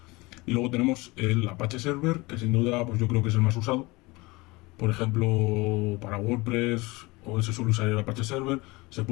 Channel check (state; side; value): quieter; right; 23.3 dB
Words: Y luego tenemos el Apache Server, que sin duda pues yo creo que es el más usado. Por ejemplo, para WordPress, o se suele usar el Apache Server. Se